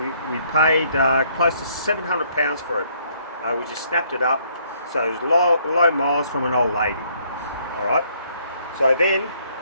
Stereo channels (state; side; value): inverted; both; correlation -0.66